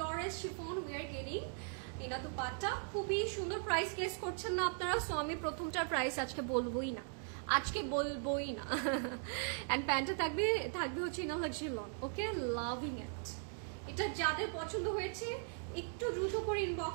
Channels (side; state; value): left; silent; 52 dB below the other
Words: chiffon we are getting in a dupatta. খুবই সুন্দর। প্রাইস গেস করছেন না আপনারা, সো আমি প্রথমটার প্রাইস আজকে বলবোই না। এন্ড প্যান্টটা থাকবে হচ্ছে in luxury loan. Okay, loving ইট। এটা যাদের পছন্দ হয়েছে একটু দ্রুত করে